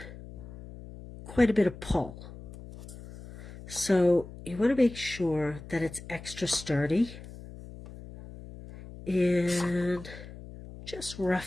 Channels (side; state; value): left; noise; hum, 15 dB below the sound